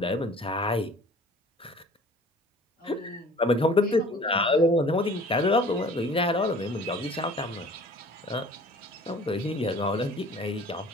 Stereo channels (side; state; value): both; normal; correlation 0.48